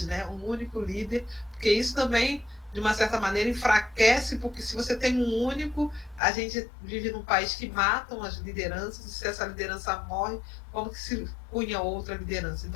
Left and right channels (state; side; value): drops out; right; at 6.2 s